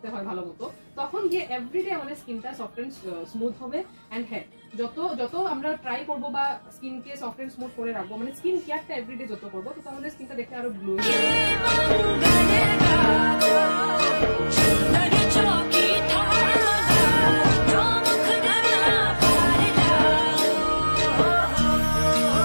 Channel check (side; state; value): both; inverted; correlation -1.00